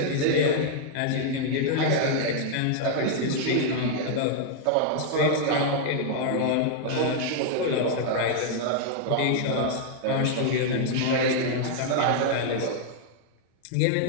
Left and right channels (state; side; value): different; both; correlation 0.00